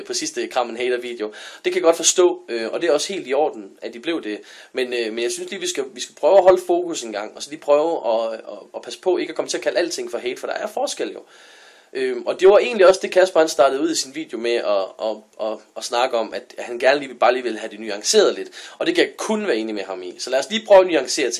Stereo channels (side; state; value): both; identical; correlation 1.00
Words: sidste Kram en Hater video. Det kan jeg godt forstå, og det er også helt i orden, at de blev det. Men jeg synes lige, vi skal prøve at holde fokus en gang, og så lige prøve at passe på ikke at komme til at kalde alting for hate, for der er forskel jo. Og det var egentlig også det, Kasper han startede ud i sin video med at snakke om, at han gerne lige vil have det nuanceret lidt. Og det kan jeg kun være enig med ham i. Så lad os lige prøve at nuancere